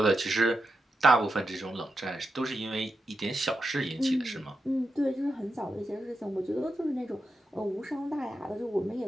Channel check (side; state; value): both; normal; correlation 0.87